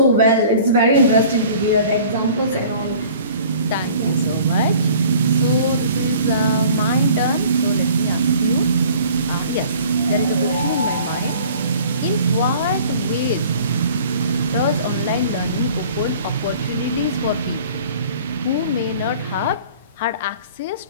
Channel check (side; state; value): both; inverted; correlation -0.49